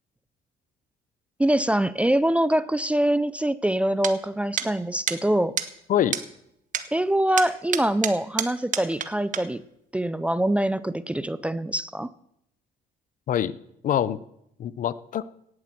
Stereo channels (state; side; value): normal; both; correlation 0.77